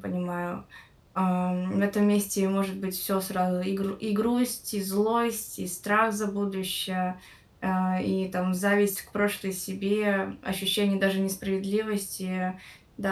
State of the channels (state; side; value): identical; both; correlation 1.00